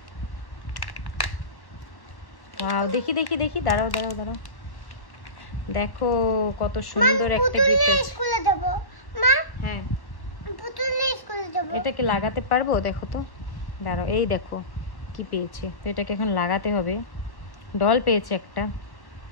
দেখি দেখি দেখি, দাঁড়াও দাঁড়াও দাঁড়াও, দেখো কত সুন্দর একটা গিফট। স্কুলে যাব মা। হ্যাঁ, পুতুল নিয়ে স্কুলে যাব। এটাকে লাগাতে পারবো? দেখো তো, দাঁড়াও, এই দেখো কি পেয়েছে। তো এটাকে এখন লাগাতে হবে। ডল পেয়েছে একটা।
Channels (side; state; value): right; late; 1.1 ms